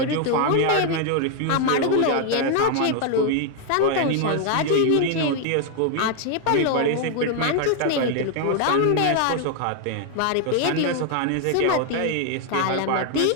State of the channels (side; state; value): both; different; correlation 0.00